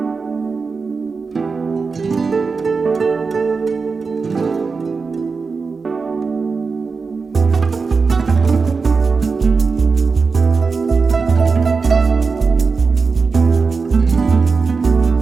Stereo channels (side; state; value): left; quieter; 4.7 dB